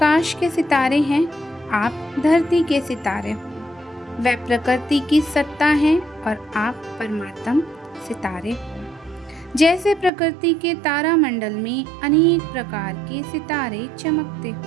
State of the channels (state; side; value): drops out; left; at 10.1 s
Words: के सितारे हैं, आप धरती के सितारे हो। वह प्रकृति की सत्ता है और आप परमात्म सितारे हो। जैसे प्रकृति के तारामंडल में अनेक प्रकार के सितारे चमकते